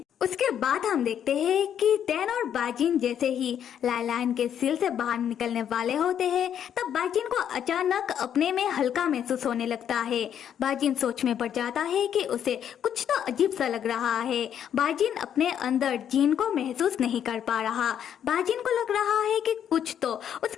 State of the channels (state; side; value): quieter; right; 9.3 dB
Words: उसके बाद हम देखते हैं कि टैन और बाजिन जैसे ही लाइलाइन के सिल से बाहर निकलने वाले होते हैं तब बाजिन को अचानक अपने में हल्का महसूस होने लगता है। बाजिन सोच में पड़ जाता है कि उसे कुछ तो अजीब सा लग रहा है। बाजिन अपने अंदर जीन को महसूस नहीं कर पा रहा। बाजिन को लग रहा है कि कुछ तो